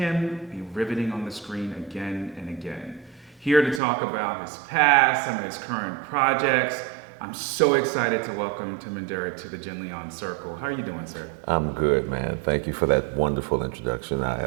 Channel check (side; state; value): left; drops out; at 3.8 s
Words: be riveting on the screen again and again. Here to talk about his past, some of his current projects, I'm so excited to welcome Timon Durrett to the Jenleeion Circle. How are you doing, sir? I'm good, man. Thank you for that wonderful introduction.